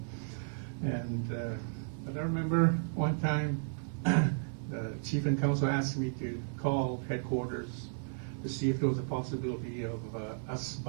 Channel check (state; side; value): silent; left; 55 dB below the other